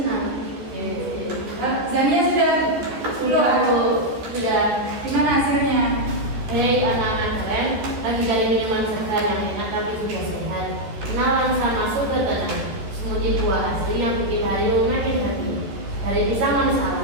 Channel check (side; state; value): left; late; 13 ms